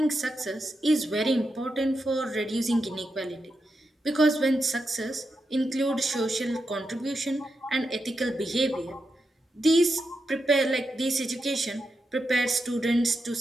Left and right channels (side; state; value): both; normal; correlation 0.86